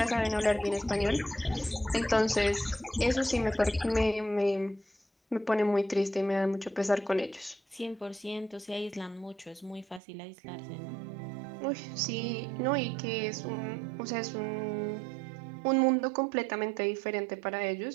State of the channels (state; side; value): drops out; left; at 10.0 s